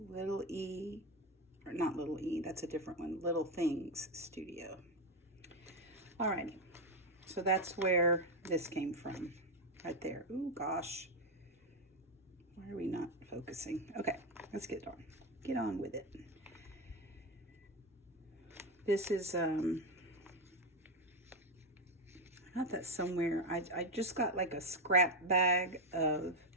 E, or not Little E, that's a different one. Little Things Studio. Alrighty. So that's where this came from. Right there. Ooh, gosh. Why are we not focusing? Okay, let's get on with it. This is, I got that somewhere. I just got like a scrap bag of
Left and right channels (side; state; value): both; normal; correlation 0.08